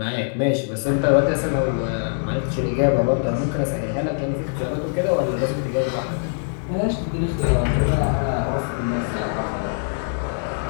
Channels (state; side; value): silent; right; 57 dB below the other